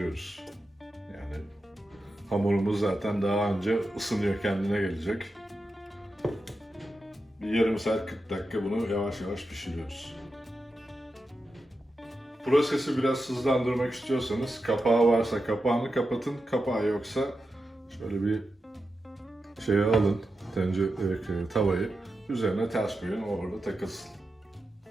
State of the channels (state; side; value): normal; both; correlation 0.90